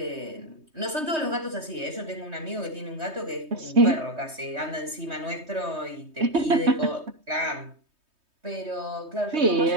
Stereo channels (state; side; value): late; left; 3.2 ms